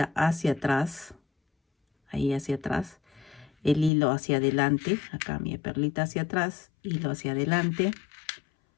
hacia atrás, ahí hacia atrás, el hilo hacia adelante, acá mi perlita hacia atrás, hilo hacia adelante,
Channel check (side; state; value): right; drops out; at 3.9 s